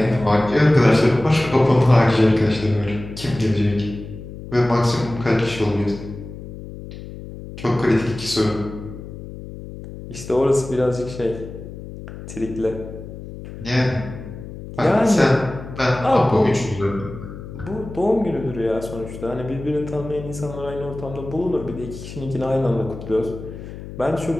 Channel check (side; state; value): left; noise; hum, 12 dB below the sound